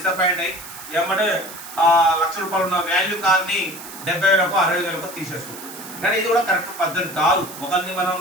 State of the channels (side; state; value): right; noise; hiss, 14 dB below the sound